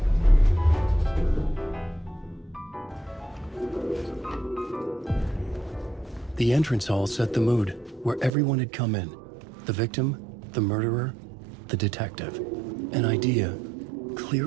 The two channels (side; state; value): left; drops out; at 8.3 s